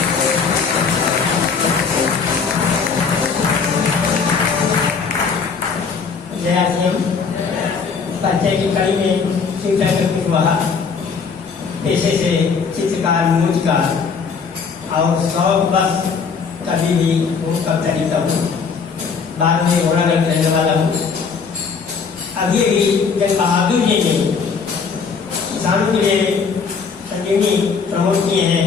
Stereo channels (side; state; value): right; quieter; 5.5 dB